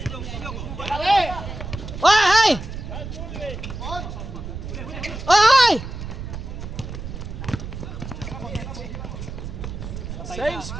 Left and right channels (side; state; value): right; noise; rumble, 8 dB below the sound